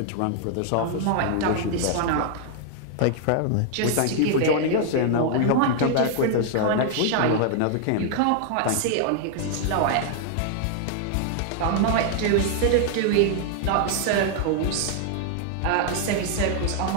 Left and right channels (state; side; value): different; both; correlation 0.00